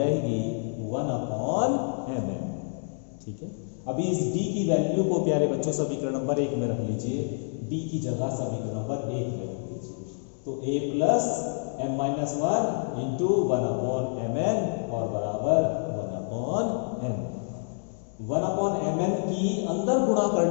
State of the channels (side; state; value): right; silent; digital silence